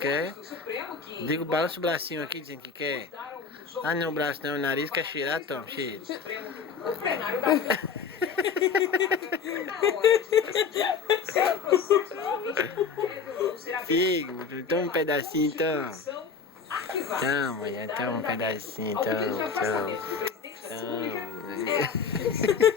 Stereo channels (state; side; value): quieter; right; 5.7 dB